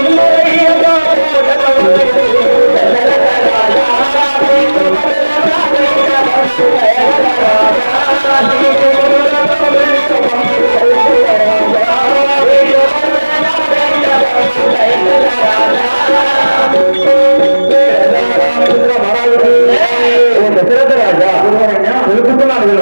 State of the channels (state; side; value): inverted; both; correlation -1.00